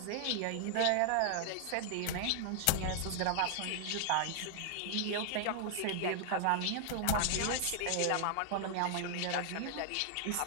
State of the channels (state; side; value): different; both; correlation -0.01